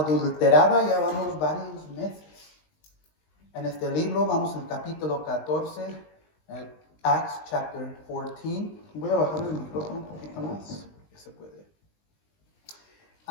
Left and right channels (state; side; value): late; right; 20 ms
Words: Ya vamos varios meses en este libro. Vamos al capítulo 14, Acts chapter 14. Voy a bajar el micrófono un poquito más, que se puede.